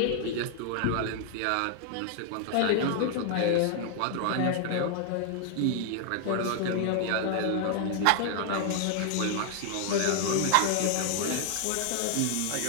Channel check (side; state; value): both; different; correlation 0.00